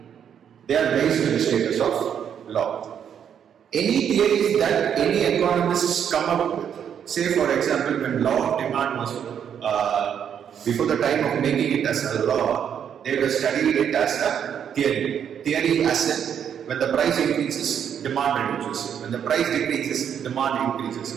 they are raised to the status of law. Any theories that any economists come up with, say for example when law of demand was before the time of making it as a law, they were studying it as a theory. Theory as in when the price increases, demand reduces. When the price decreases, demand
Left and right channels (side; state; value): left; quieter; 8.5 dB